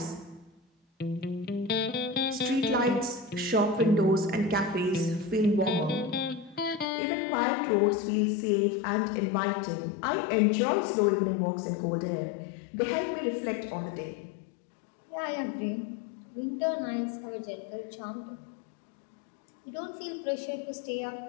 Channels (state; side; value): drops out; right; at 6.9 s